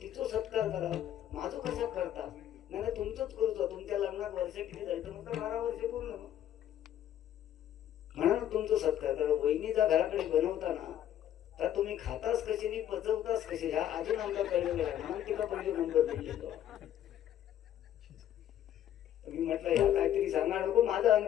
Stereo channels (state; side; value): quieter; right; 11.1 dB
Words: तिचो सत्कार करा, माझो कसा करता. नाही तुमचंच करतो, तुमच्या लग्नात वर्ष किती झाली तर म्हटलं 12 वर्ष पूर्ण. म्हणा तुमचं सत्कार करा. वहिनीचा घराकडे बनवताना तर तुम्ही खाताच कशी नाही पचवताच कशी, ह्या अजून आमचा कळलेलं आहे. म्हणून तिला पहिले नंबर दिलेलो. मी म्हटलं ह्या काहीतरी सांगा नको, माझं